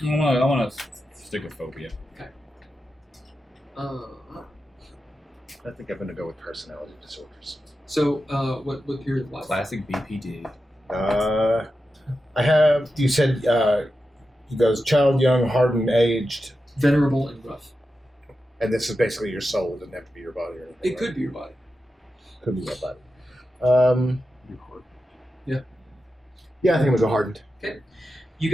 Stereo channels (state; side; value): normal; both; correlation 0.90